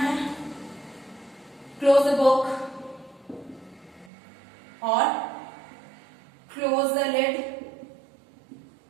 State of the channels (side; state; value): left; drops out; at 4.1 s